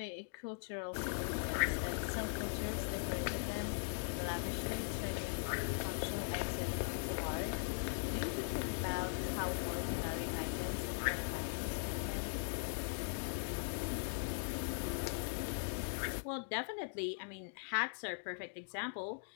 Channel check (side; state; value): right; silent; digital silence